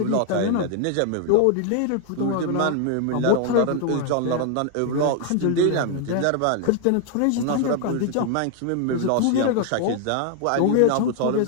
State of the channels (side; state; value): both; different; correlation 0.00